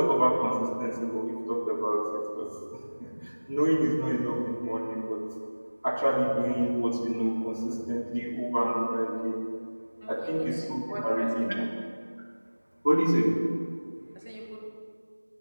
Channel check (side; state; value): both; inverted; correlation -1.00